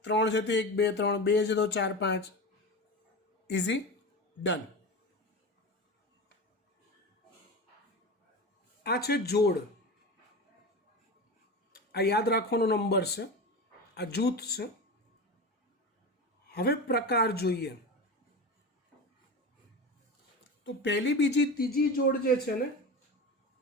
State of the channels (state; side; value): normal; both; correlation 0.26